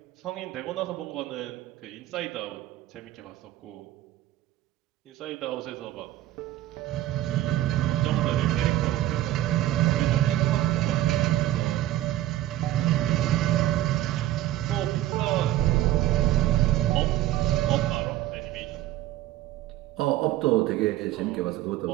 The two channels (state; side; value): quieter; left; 14.3 dB